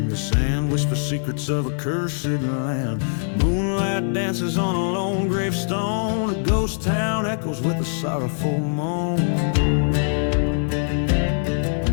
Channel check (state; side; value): silent; right; digital silence